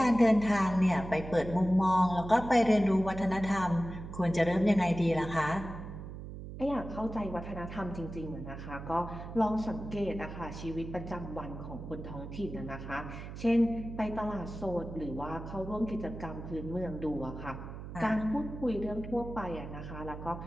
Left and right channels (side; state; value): right; noise; hum, 10 dB below the sound